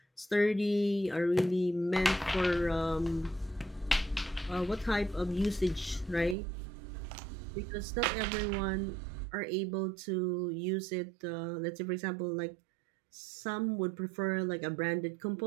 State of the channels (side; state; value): left; drops out; at 6.4 s